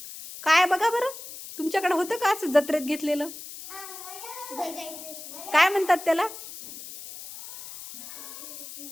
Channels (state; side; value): noise; left; hiss, 12 dB below the sound